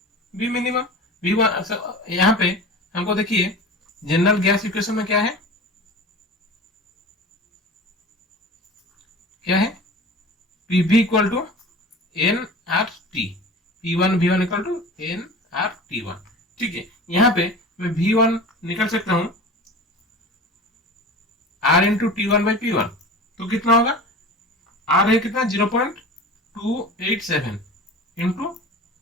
V minimum. V यहाँ पे हमको देखिए जनरल गैस इक्वेशन में क्या है, PV equal to N R T, P1 V1 equal to N R T1। ठीक है, यहाँ पे मैं V1 निकल सकता हूं R into T1 by P1, तो कितना होगा, R है कितना 0.287 इंटू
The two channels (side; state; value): both; normal; correlation 0.36